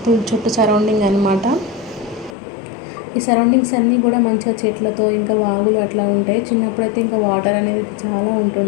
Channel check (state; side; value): drops out; right; at 2.4 s